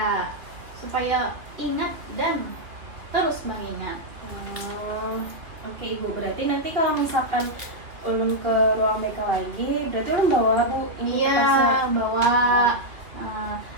supaya ingat dan terus mengingat. Oke ibu, berarti nanti kalau misalkan ulun ke ruang BK lagi, berarti ulun bawa bu ini Iya, kertasnya? bawa.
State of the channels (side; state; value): left; late; 3.1 ms